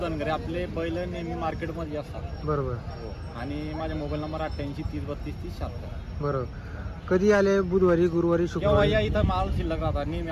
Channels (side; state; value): both; identical; correlation 1.00